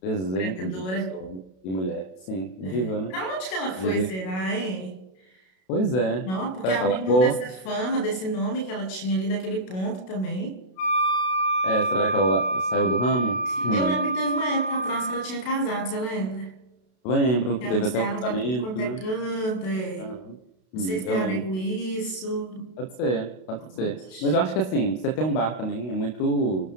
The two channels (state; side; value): late; right; 32 ms